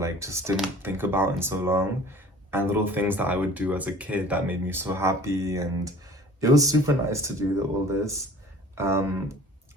just didn't think about in so long, and little things that I would do as a kid that made me so happy, and it was super nice to do all this. Um,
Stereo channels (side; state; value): both; normal; correlation 0.47